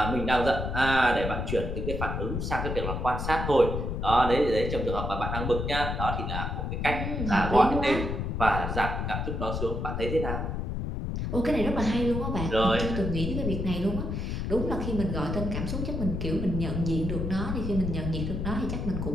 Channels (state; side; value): noise; left; rumble, 3 dB below the sound